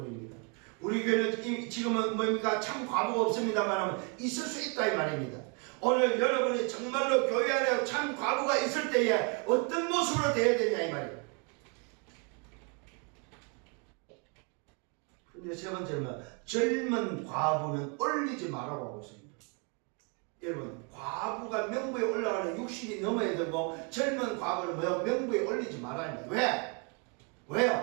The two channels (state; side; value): quieter; left; 35.6 dB